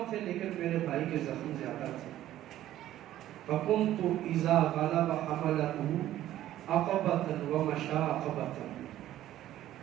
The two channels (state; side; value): quieter; left; 13.3 dB